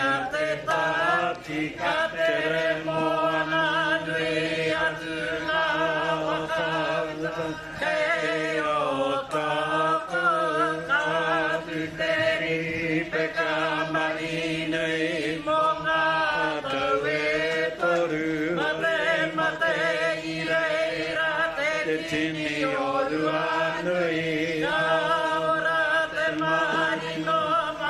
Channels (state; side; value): identical; both; correlation 1.00